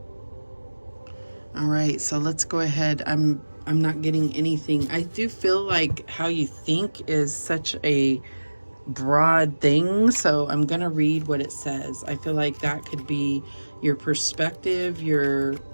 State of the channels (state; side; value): inverted; both; correlation -1.00